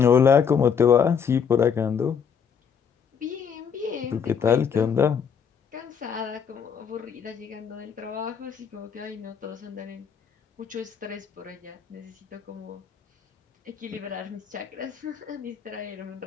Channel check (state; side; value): quieter; right; 7.0 dB